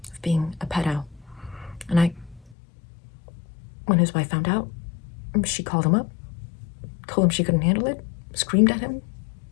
of being a pedo. And when his wife found out, she called him up, told him she couldn't handle it, screamed at him,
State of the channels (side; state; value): right; drops out; at 2.6 s